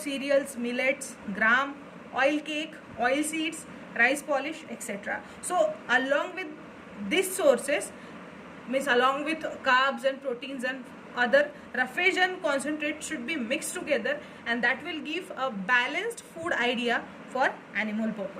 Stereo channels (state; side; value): identical; both; correlation 1.00